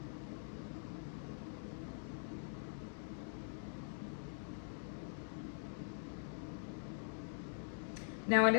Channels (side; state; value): right; silent; digital silence